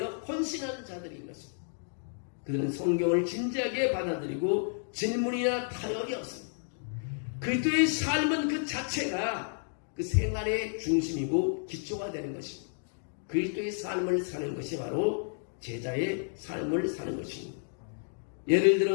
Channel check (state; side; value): silent; right; digital silence